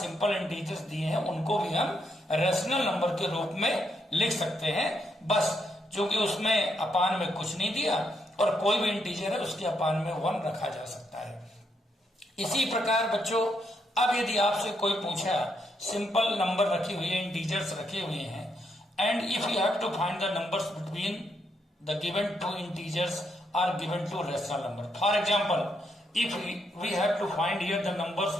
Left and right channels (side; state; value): both; normal; correlation 0.78